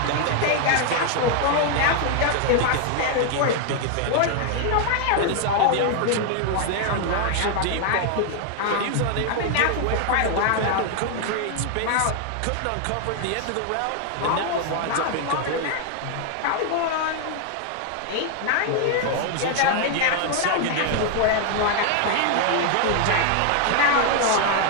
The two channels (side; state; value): both; different; correlation 0.00